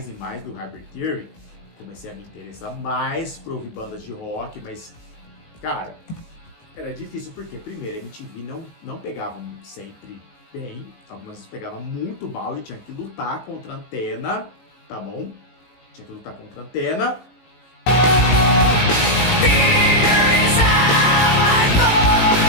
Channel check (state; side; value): late; right; 18 ms